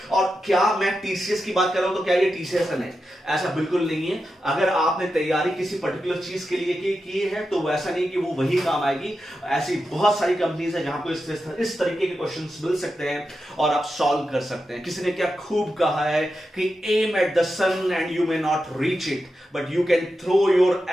और क्या मैं टीसीएस की बात कर रहा हूं तो क्या ये टीसीएस है? नहीं, ऐसा बिल्कुल नहीं है. अगर आपने तैयारी किसी पर्टिकुलर चीज के लिए की है तो वैसा नहीं कि वो वही काम आएगी. ऐसी बहुत सारी कंपनीज है जहां को इस तरीके के क्वेश्चंस मिल सकते हैं और आप सॉल्व कर सकते हैं. किसी ने क्या खूब कहा है कि aim at the sun and you may not reach it, but you can throw your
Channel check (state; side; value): normal; both; correlation 0.89